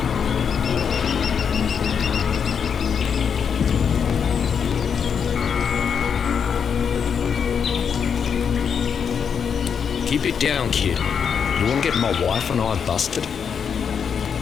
Keep it down, kid. You want to get my wife and I busted?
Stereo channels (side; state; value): right; quieter; 6.9 dB